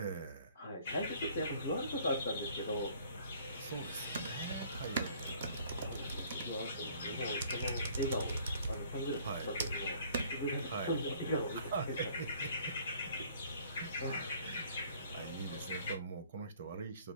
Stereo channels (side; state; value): both; inverted; correlation -0.57